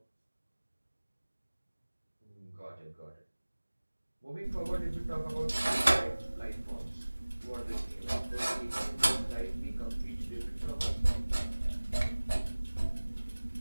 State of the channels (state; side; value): inverted; both; correlation -1.00